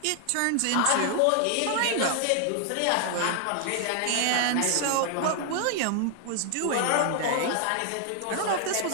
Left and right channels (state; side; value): different; both; correlation 0.00